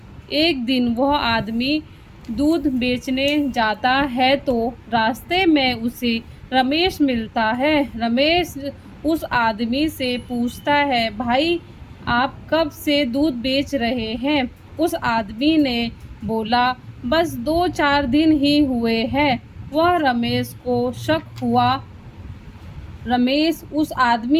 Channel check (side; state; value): both; identical; correlation 1.00